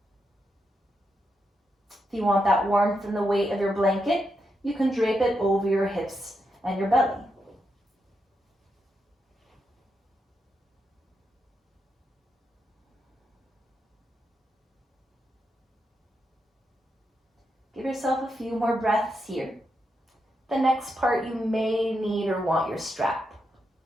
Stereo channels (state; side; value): normal; both; correlation 0.84